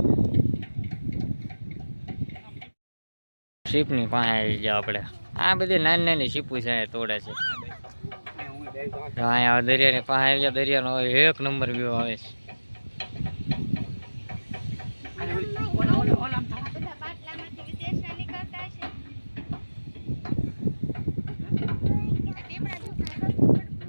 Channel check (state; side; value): inverted; both; correlation -1.00